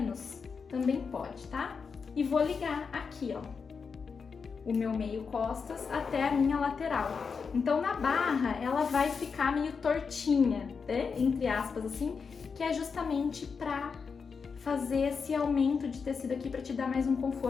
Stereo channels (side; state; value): right; quieter; 5.5 dB